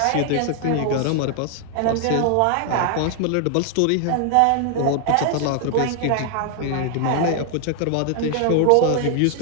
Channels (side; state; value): both; different; correlation 0.00